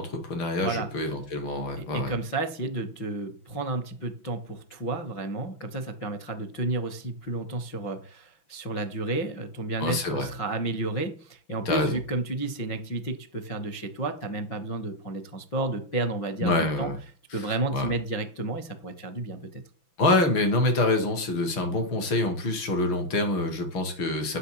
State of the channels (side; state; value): right; late; 6.0 ms